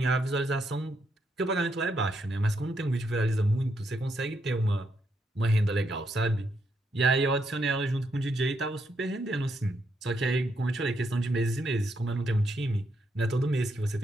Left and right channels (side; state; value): both; normal; correlation 0.78